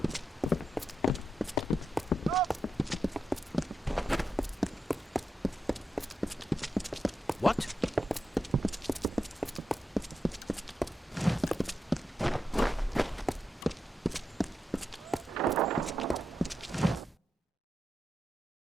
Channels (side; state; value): both; normal; correlation 0.87